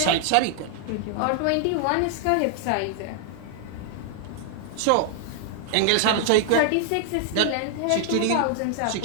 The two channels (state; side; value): different; both; correlation 0.00